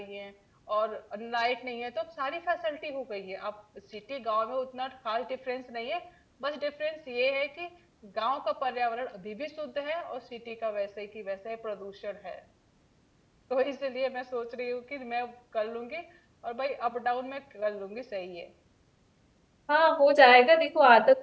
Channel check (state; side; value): identical; both; correlation 1.00